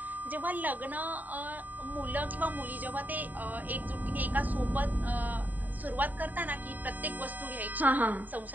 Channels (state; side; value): late; left; 0.086 ms